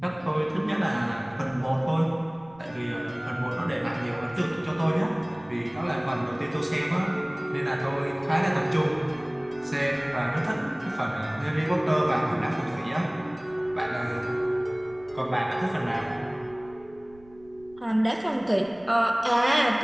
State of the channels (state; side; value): noise; right; rumble, 25 dB below the sound